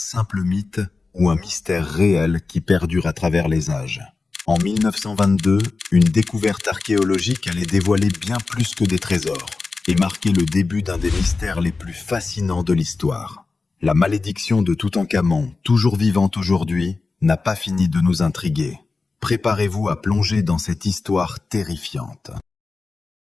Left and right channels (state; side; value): quieter; right; 4.0 dB